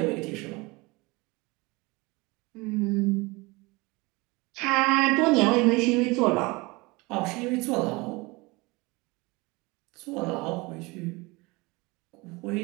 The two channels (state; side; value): quieter; left; 24.4 dB